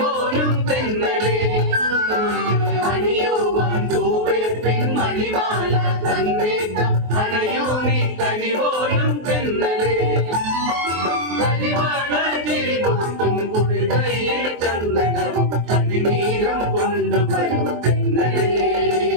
തെന്നലേ അണിയുവാൻ തൂവേ പെൺമണിമാല തന്നേക്കാം അണയോ നീ കനിപോലും തെന്നലേ കരിവാള ചിരിപൊട്ടും കുളികയിൽ ചന്ദനവും കണിനീരം കൊണ്ടുവരും തെന്നലേ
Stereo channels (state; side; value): late; left; 23 ms